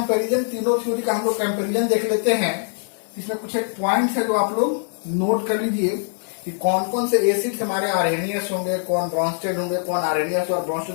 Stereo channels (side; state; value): right; silent; digital silence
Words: तीनों थ्योरी का हम लोग कंपेरिजन देख लेते हैं। इसमें कुछ एक पॉइंट है जो आप लोग नोट कर लीजिए कि कौन कौन से एसिड्स हमारे आर्हेनियस होंगे, कौन ब्रॉन्स्टेड होंगे, कौन आर्हेनियस और